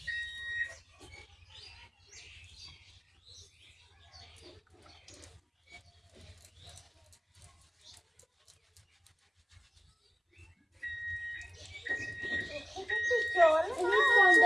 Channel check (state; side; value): identical; both; correlation 1.00